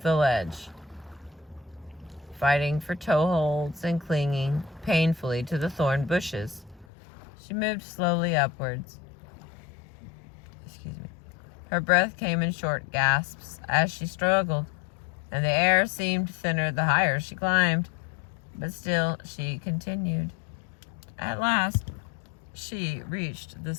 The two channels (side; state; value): right; drops out; at 6.9 s